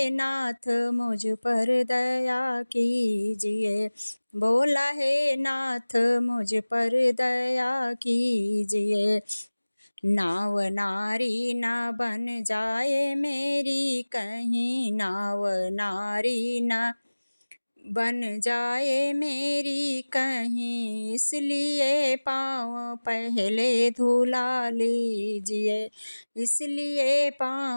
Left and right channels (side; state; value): both; inverted; correlation -1.00